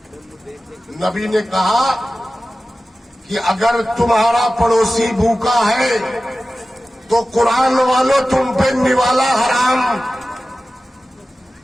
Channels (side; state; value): both; normal; correlation 0.95